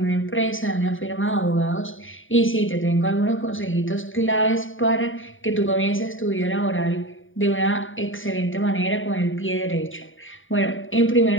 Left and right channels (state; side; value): late; right; 0.57 ms